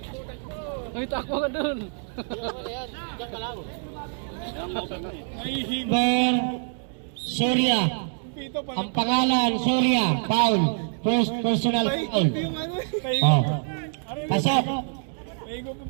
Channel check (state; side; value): silent; left; 61 dB below the other